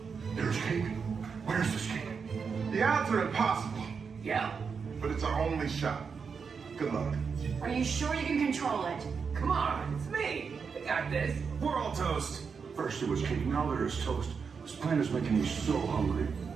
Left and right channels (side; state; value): left; quieter; 5.8 dB